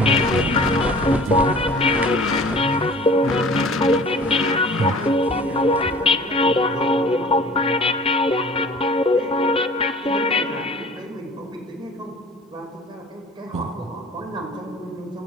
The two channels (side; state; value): both; normal; correlation 0.45